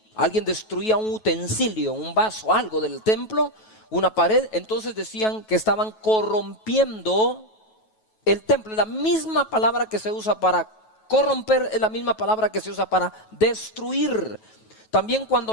alguien destruía un utensilio, un vaso, algo del templo, una pared, entonces decían que estaban corrompiendo el templo. La misma palabra que se usa para corromper es la misma palabra que se usa para destruir. También cuando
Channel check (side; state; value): right; late; 9.2 ms